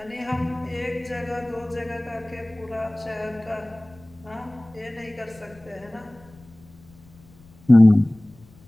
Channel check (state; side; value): noise; left; rumble, 25 dB below the sound